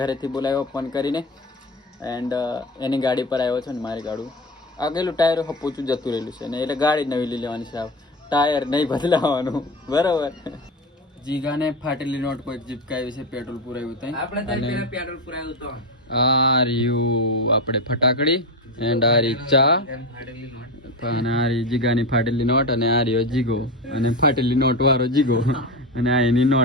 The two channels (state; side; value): normal; both; correlation 0.20